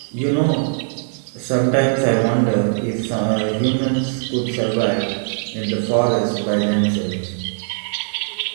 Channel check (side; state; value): left; silent; 62 dB below the other